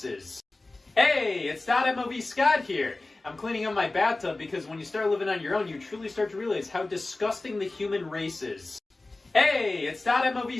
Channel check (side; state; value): right; quieter; 3.1 dB